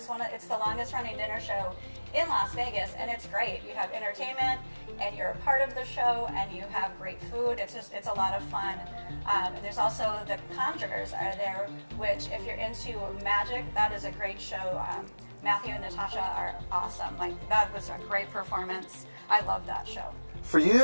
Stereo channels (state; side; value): inverted; both; correlation -1.00